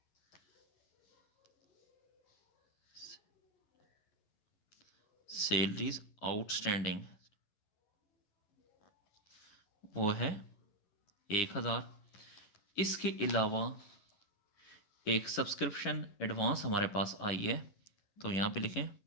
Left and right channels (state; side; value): late; right; 11 ms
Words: सैलरीज आउटस्टैंडिंग वो है 1,000। इसके अलावा एक सब्सक्रिप्शन एडवांस हमारे पास आई है, तो यहाँ पे लिखें